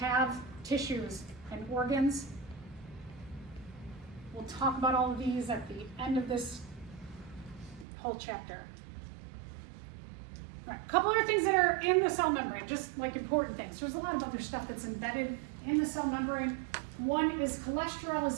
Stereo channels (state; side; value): drops out; left; at 7.9 s